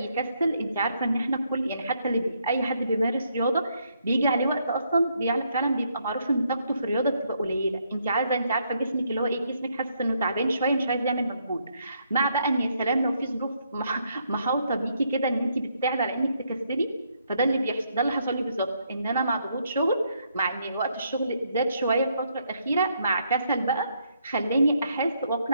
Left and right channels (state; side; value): inverted; both; correlation -0.74